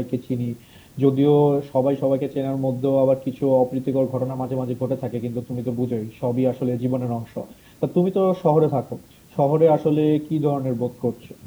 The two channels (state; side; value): identical; both; correlation 1.00